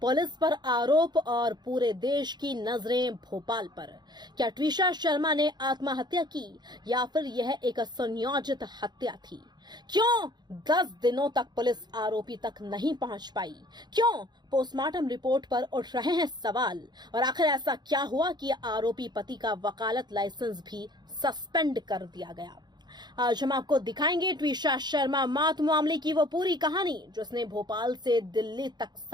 पुलिस पर आरोप और पूरे देश की नजरें भोपाल पर। क्या ट्विशा शर्मा ने आत्महत्या की या फिर यह एक सुनियोजित हत्या थी? क्यों 10 दिनों तक पुलिस आरोपी तक नहीं पहुंच पाई? क्यों पोस्टमार्टम रिपोर्ट पर उठ रहे हैं सवाल? और आखिर ऐसा क्या हुआ कि आरोपी पति का वकालत लाइसेंस भी सस्पेंड कर दिया गया? आज हम आपको दिखाएंगे ट्विशा शर्मा मौत मामले की वो पूरी कहानी जिसने भोपाल से दिल्ली तक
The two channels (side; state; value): left; late; 0.21 ms